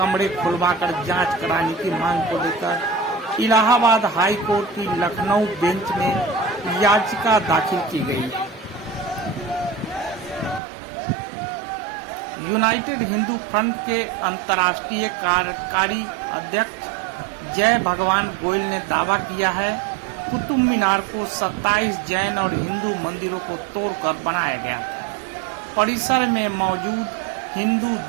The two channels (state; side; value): drops out; left; at 10.6 s